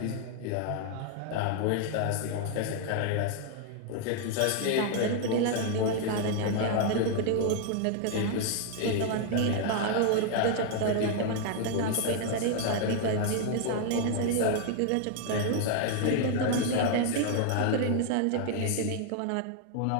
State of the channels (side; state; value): both; different; correlation 0.00